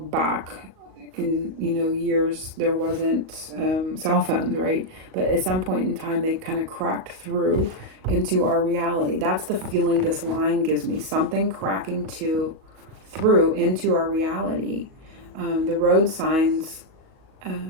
back in years, there wasn't cell phones, right? But at some point in time they kind of cracked through into our reality. That's the feeling this line gives me, something cracking through into our reality. The road signs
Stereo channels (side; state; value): left; late; 37 ms